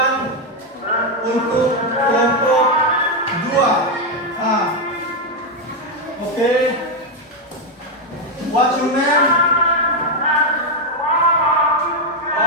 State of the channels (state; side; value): normal; both; correlation 0.04